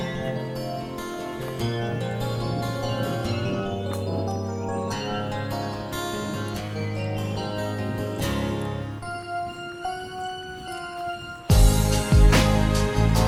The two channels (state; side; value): identical; both; correlation 1.00